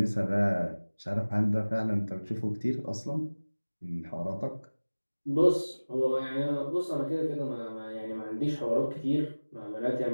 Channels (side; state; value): both; inverted; correlation -1.00